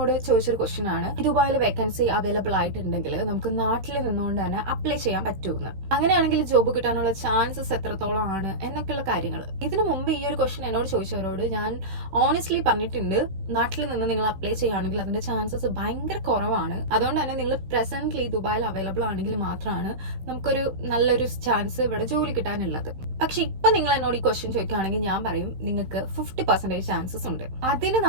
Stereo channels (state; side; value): late; left; 16 ms